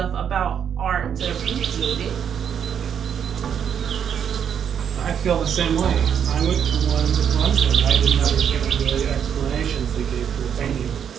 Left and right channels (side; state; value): left; quieter; 8.2 dB